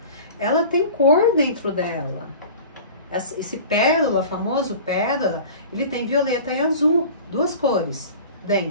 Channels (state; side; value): inverted; both; correlation -0.39